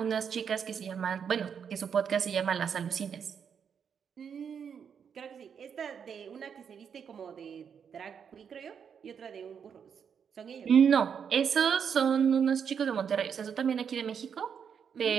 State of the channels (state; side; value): quieter; left; 7.3 dB